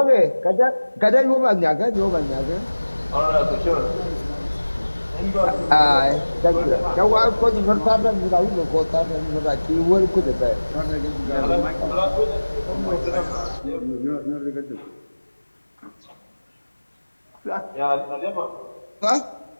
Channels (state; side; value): inverted; both; correlation -1.00